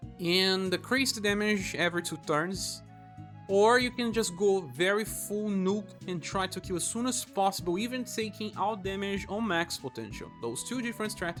and decrease the damage every 2 turns. Or you can just go very full nuke and try to kill as soon as possible, even taking all damage on max potential. Those 2 different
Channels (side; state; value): both; identical; correlation 1.00